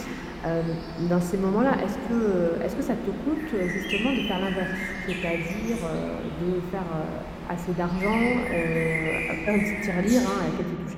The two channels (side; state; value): both; identical; correlation 1.00